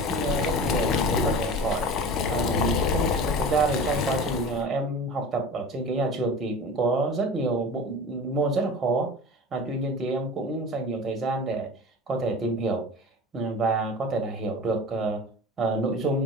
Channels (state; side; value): normal; both; correlation 0.35